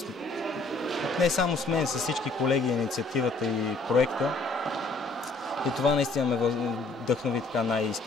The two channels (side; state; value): right; quieter; 3.4 dB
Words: не само с мен, с всички колеги, инициативата и проекта. И това наистина ме вдъхнови така